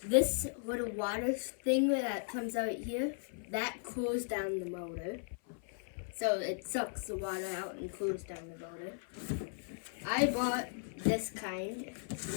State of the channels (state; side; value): silent; right; 53 dB below the other